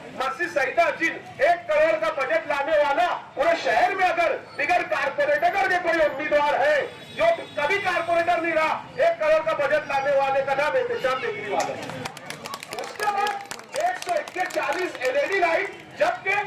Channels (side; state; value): both; identical; correlation 1.00